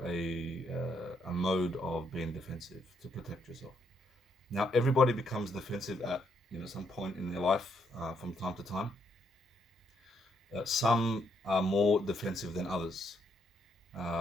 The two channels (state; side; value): normal; both; correlation 0.74